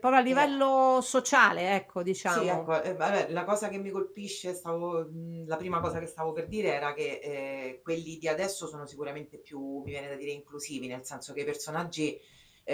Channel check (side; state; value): both; identical; correlation 1.00